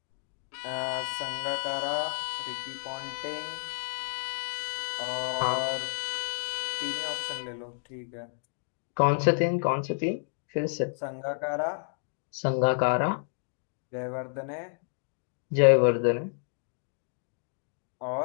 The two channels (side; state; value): right; silent; digital silence